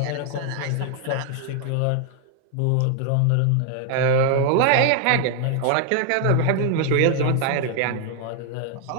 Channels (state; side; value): different; both; correlation 0.00